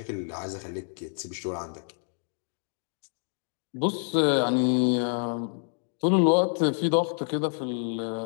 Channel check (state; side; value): silent; right; 57 dB below the other